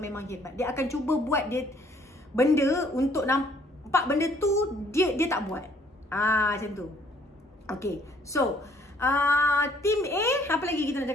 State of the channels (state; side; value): normal; both; correlation 0.63